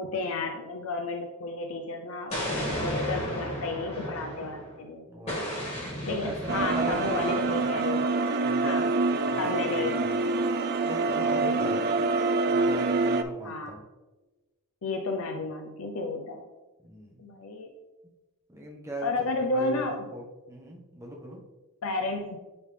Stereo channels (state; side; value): normal; both; correlation 0.12